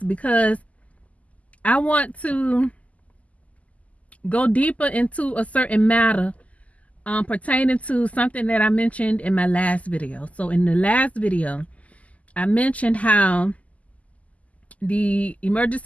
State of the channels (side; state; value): right; late; 0.071 ms